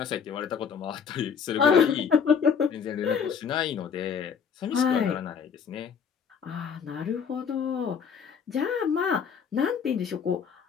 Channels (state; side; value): quieter; right; 6.8 dB